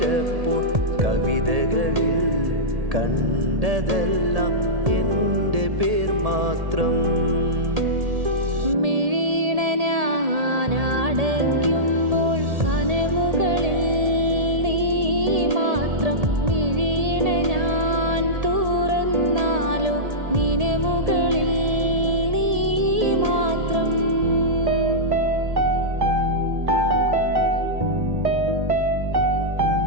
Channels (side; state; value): left; late; 1.8 ms